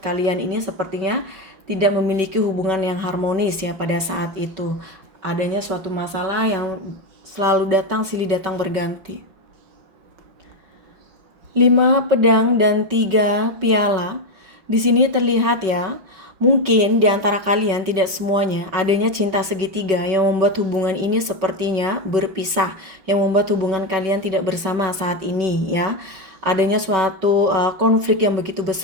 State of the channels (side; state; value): left; late; 5.3 ms